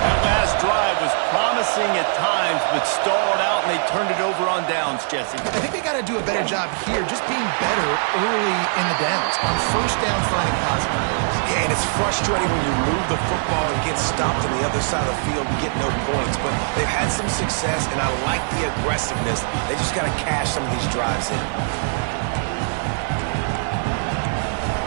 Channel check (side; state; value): left; silent; digital silence